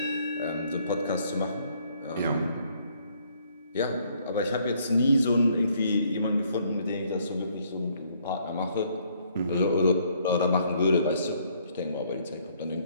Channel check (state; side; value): inverted; both; correlation -0.66